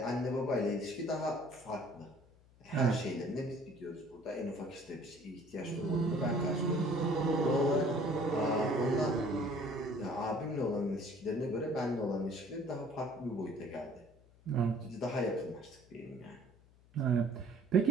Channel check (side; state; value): left; noise; hum, 27 dB below the sound